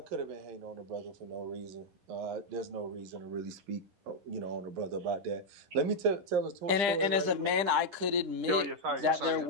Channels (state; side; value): late; left; 10 ms